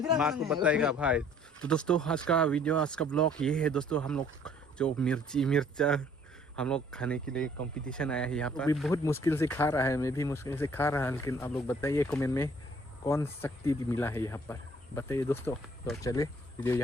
माँ को बताएगा भाई. तो दोस्तों आज का वीडियो आज का ब्लॉग ये है दोस्तों. हम लोग जो मिर्चा हम लोग खाने के लिए कंपटीशन आया है यहाँ पर. अभी बहुत मुश्किल से खा रहा है मैं भी मुश्किल से खा रहा है लेकिन आप लोग बताइए कमेंट में कौन शक्ति मिला है यहाँ पर बताइए दोस्तों. तो चले वीडियो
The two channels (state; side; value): normal; both; correlation 0.58